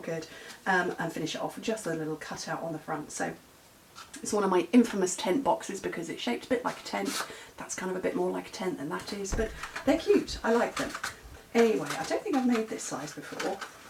good, and finish it off with just a little cutout on the front. So it's one of my infamous tent boxes because it's shaped a bit like a tent. That's kind of a bit more like a tent than that is, but they're cute. I like them. Anyway, I don't think I've made this size before.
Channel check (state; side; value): identical; both; correlation 1.00